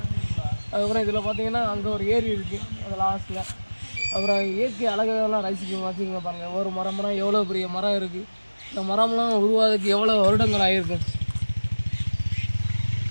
அதுக்கப்புறம் இதில் பார்த்தீங்கன்னா அங்கே ஒரு ஏரி இருக்குது அது லாஸ்ட்டில். அப்புறம் இயற்கை அழகெல்லாம் ரசிச்சுங்க பாருங்கள். ஒரு மரம் எவ்வளோ பெரிய மரம் இருக்குது. இந்த மரம்லாம் உருவாதுக்கு எவ்வளோ வருடங்கள் ஆகிருக்கு.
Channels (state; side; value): inverted; both; correlation -1.00